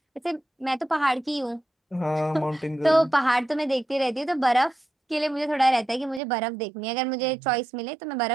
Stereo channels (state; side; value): drops out; left; at 6.2 s